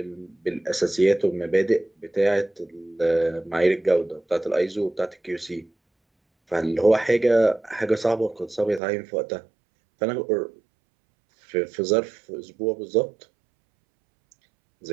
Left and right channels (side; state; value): left; drops out; at 8.8 s